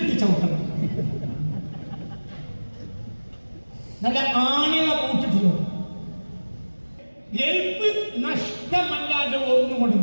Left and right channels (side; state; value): both; inverted; correlation -1.00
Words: ചവിട്ടണം. നല്ല ആണികള ബൂട്ടിട്ട് ഗൾഫ് നഷ്ടമല്ലാതെ ഒന്നുകൊണ്ട്